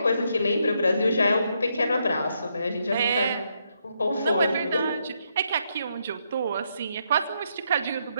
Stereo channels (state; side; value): inverted; both; correlation -0.77